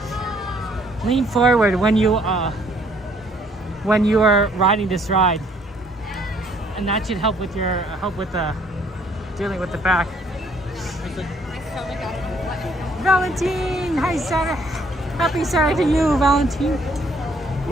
Lean forward when you are riding this ride, and that should help with your dealing with the back. Valentine, hi Saturday. Happy Saturday to you, Valentine.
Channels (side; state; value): both; normal; correlation 0.64